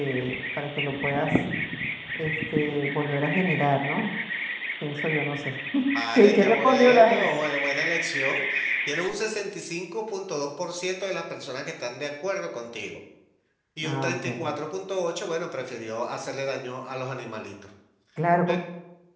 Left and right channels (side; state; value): both; identical; correlation 1.00